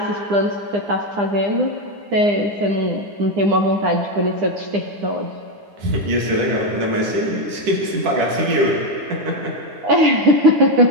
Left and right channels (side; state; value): left; late; 9.8 ms